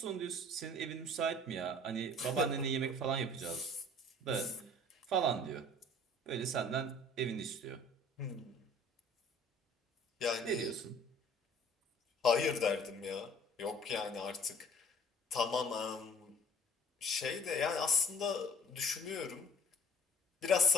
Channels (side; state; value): both; normal; correlation 0.51